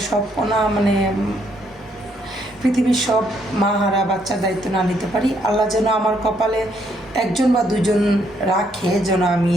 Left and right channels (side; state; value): both; normal; correlation 0.71